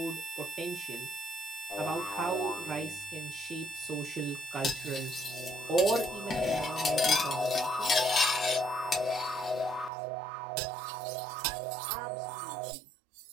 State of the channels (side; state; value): left; drops out; at 9.9 s